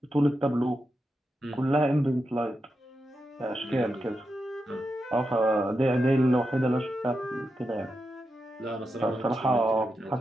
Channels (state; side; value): normal; both; correlation 0.87